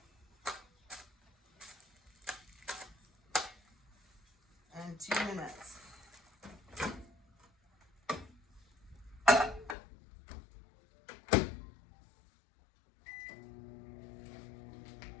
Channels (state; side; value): drops out; right; at 9.8 s